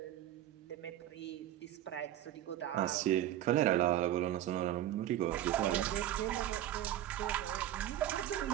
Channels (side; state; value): left; quieter; 12.7 dB